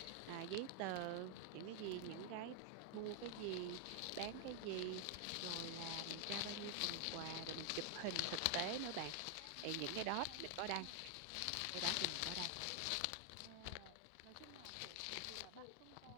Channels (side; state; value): both; different; correlation 0.00